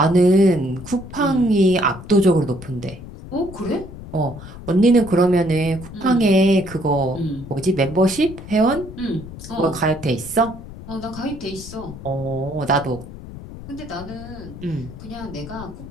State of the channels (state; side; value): noise; left; rumble, 14 dB below the sound